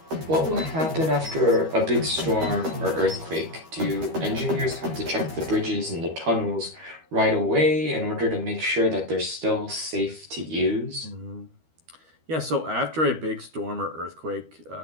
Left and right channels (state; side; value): late; left; 13 ms